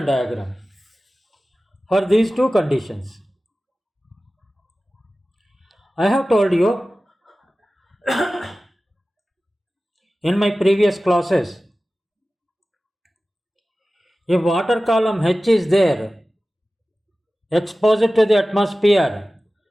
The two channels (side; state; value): both; normal; correlation 0.96